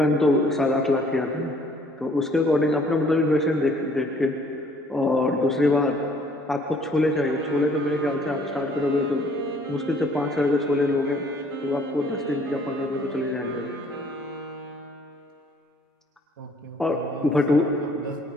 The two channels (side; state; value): both; normal; correlation 0.59